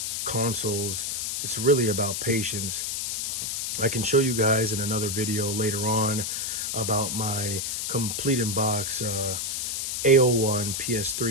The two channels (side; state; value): left; noise; hiss, 2 dB below the sound